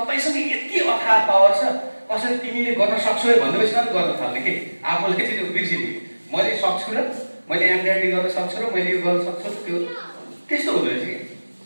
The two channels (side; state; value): both; inverted; correlation -1.00